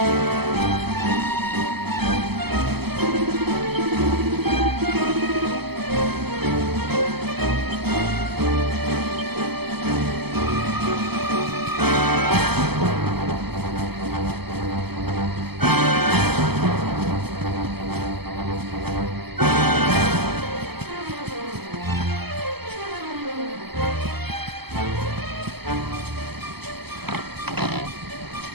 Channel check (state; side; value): late; left; 0.96 ms